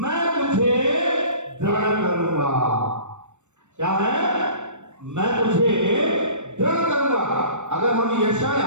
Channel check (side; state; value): left; late; 0.84 ms